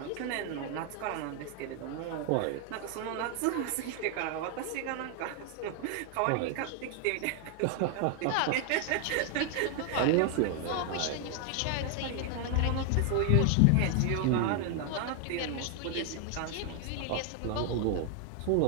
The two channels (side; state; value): both; different; correlation 0.00